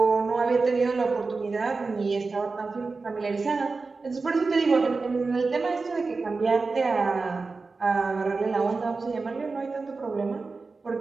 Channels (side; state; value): left; quieter; 4.0 dB